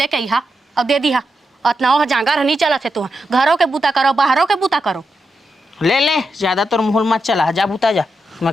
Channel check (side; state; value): both; normal; correlation 0.86